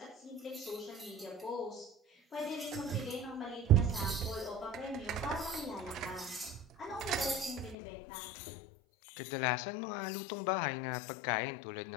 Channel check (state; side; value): drops out; right; at 7.8 s